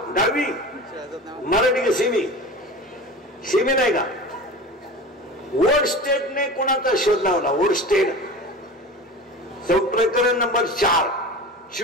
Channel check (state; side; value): normal; both; correlation 0.33